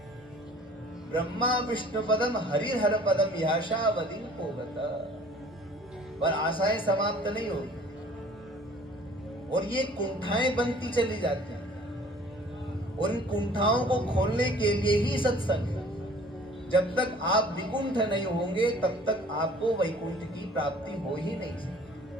ब्रह्मा विष्णु पदम हरिहर पदम याशावधि पोगता, पर आशाएं समाप्त नहीं होती और ये कुंठाएं बनती चली जाती हैं। और इन कुंठाओं को खोलने के लिए ही सत्संग है। जब तक आप विकुंठ नहीं होंगे तब तक आपको वैकुंठ की प्राप्ति हो ही नहीं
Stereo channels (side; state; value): both; normal; correlation 0.51